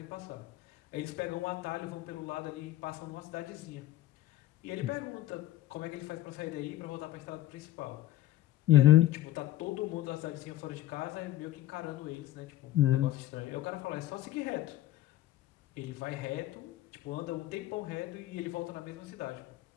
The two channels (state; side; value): quieter; right; 14.4 dB